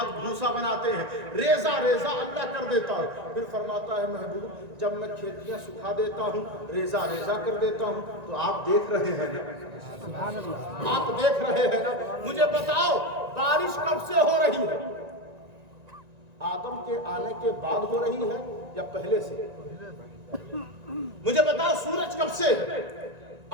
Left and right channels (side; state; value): left; late; 1.9 ms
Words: بھوسا بناتے ہیں، ریزہ ریزہ اللہ کر دیتا ہے۔ پھر فرماتا ہے محبوب جب میں کھیتیاں سکھا دیتا ہوں، ریزہ ریزہ کر دیتا ہوں، تو آپ دیکھ رہے ہیں نا، آپ دیکھ رہے ہیں نا۔ مجھے بتاؤ بارش کب سے ہو رہی ہے؟ آدم کے آنے کے بعد ہو رہی ہے یا پہلے سے؟ مجھے بتاؤ سورج کب سے ہے؟